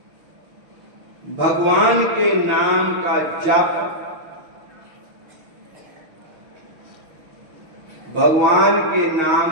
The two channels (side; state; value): left; late; 6.3 ms